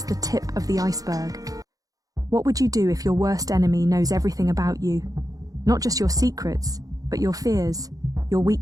the tip of the iceberg. What would you do if your worst enemy knows everything about you? Not just your secrets, but your fears, your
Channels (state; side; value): late; left; 0.17 ms